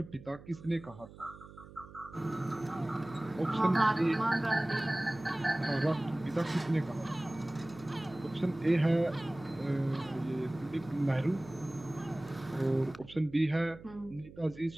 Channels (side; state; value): right; noise; hum, 18 dB below the sound